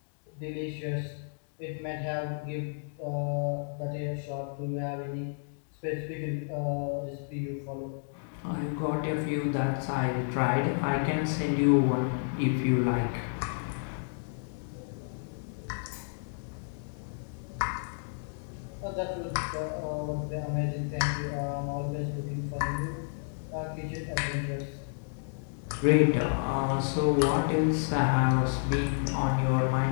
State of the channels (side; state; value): right; silent; digital silence